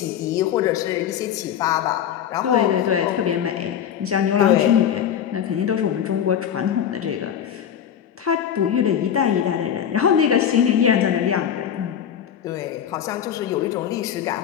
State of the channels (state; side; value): quieter; right; 9.2 dB